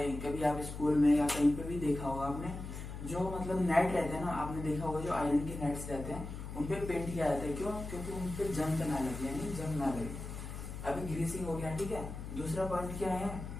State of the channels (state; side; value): noise; left; hum, 8 dB below the sound